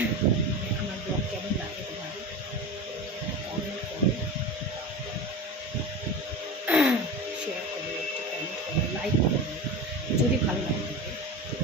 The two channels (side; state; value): both; normal; correlation 0.27